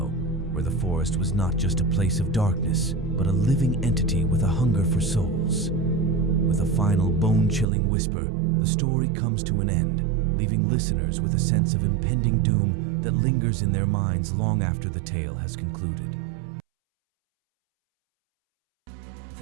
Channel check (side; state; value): left; drops out; at 7.7 s